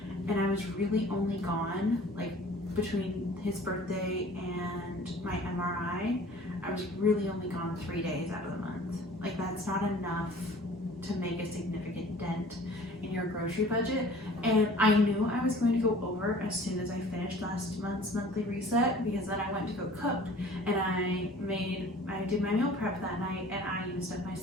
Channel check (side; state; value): both; normal; correlation 0.47